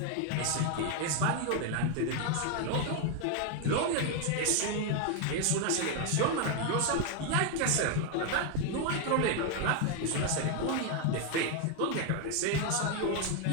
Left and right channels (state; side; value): different; both; correlation 0.01